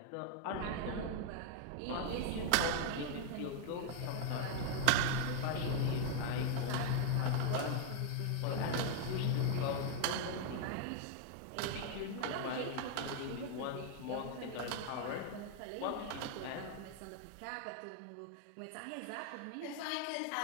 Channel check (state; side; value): different; both; correlation 0.00